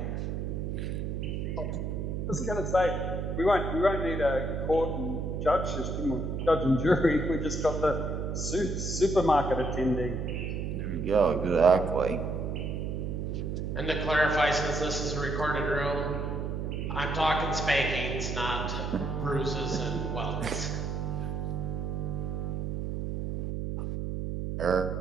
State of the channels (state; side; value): noise; right; hum, 2 dB below the sound